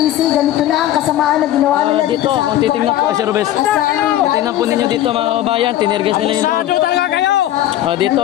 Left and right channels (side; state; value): right; quieter; 13.2 dB